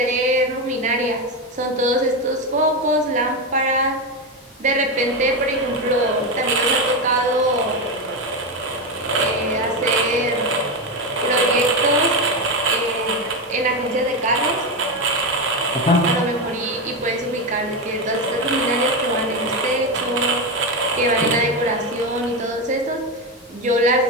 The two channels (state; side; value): normal; both; correlation 0.12